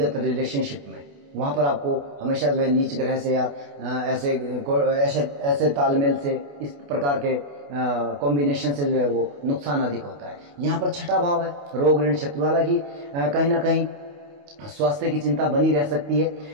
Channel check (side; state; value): left; late; 28 ms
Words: रिलेशनशिप में। वहां पर आपको हमेशा जो है नीच ग्रह से या ऐसे ऐसे तालमेल से, इस प्रकार के कॉम्बिनेशन से जो है वो नुकसान अधिक होता है। यहाँ पर छठा भाव है रोग ऋण शत्रु, हालांकि कहीं ना कहीं स्वास्थ्य की चिंता बनी रह सकती है,